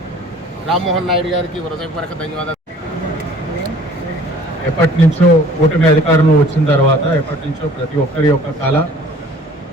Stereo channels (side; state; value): both; normal; correlation 0.51